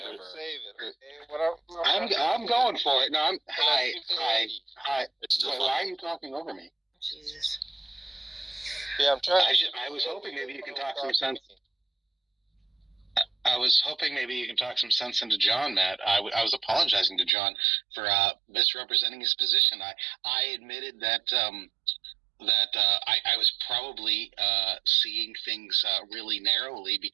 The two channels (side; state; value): left; drops out; at 17.3 s